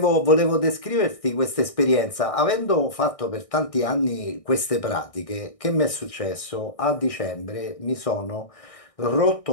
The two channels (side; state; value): right; late; 1.6 ms